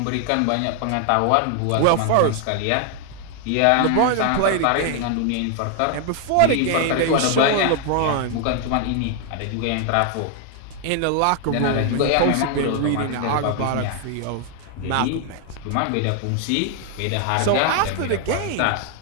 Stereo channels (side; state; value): both; different; correlation 0.00